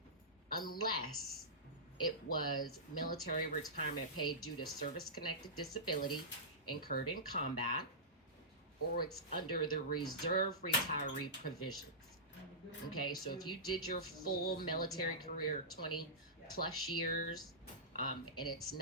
unless it was military retirement pay due to service-connected disability incurred in combat, or it's under the reserve retiree provisions. Okay, so if you did your full military career, 20 plus years, and it's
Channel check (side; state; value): both; normal; correlation -0.18